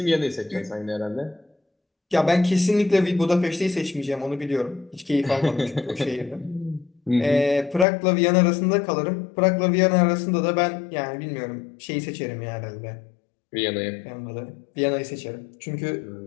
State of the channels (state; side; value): drops out; right; at 7.9 s